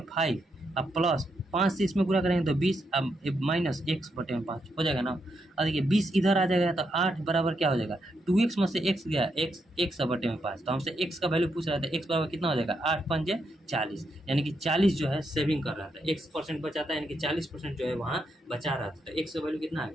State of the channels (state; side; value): normal; both; correlation 0.81